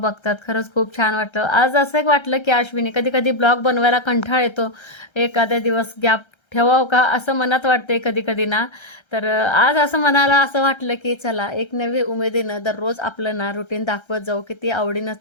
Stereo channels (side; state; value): right; late; 1.3 ms